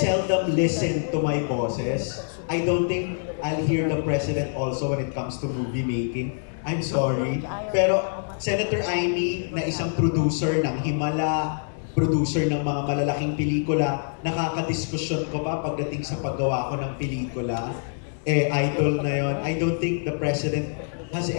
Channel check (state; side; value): silent; right; digital silence